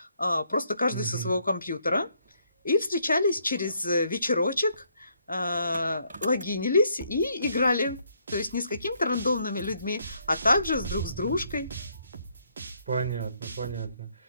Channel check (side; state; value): both; inverted; correlation -0.71